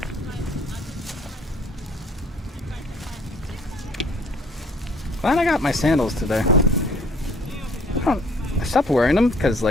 Glad I got my sandals today. I stopped wearing them because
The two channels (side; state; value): both; normal; correlation 0.58